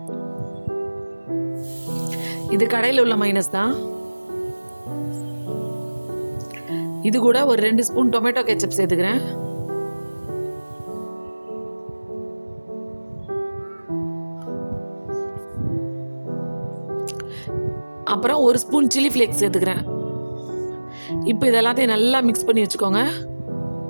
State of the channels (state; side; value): inverted; both; correlation -1.00